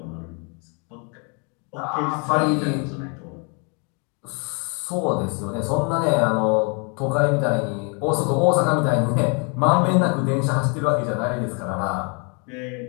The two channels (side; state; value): right; quieter; 35.7 dB